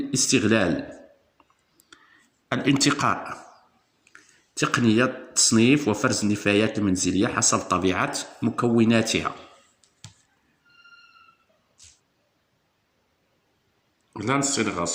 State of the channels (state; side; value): identical; both; correlation 1.00